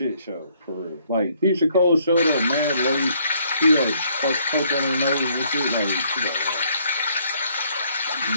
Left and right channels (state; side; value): inverted; both; correlation -0.66